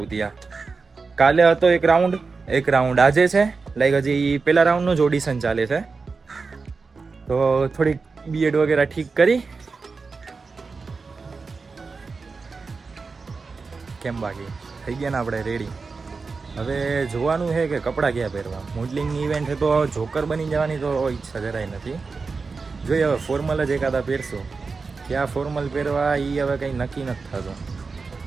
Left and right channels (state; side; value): quieter; left; 4.5 dB